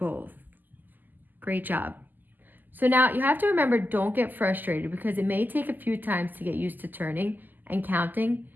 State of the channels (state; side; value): late; left; 0.086 ms